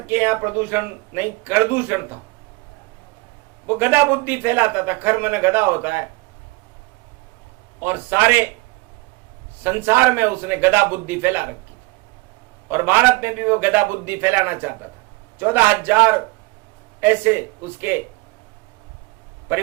यहाँ प्रदूषण नहीं, करदूषण था। वो गधा बुद्धि फैलाता था, खर मन गधा होता है, और सारे संसार में उसने गधा बुद्धि फैला रखी थी। और भारत में भी वो गधा बुद्धि फैलाना चाहता था। 14,000 ऐसे उसके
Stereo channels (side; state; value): left; quieter; 25.0 dB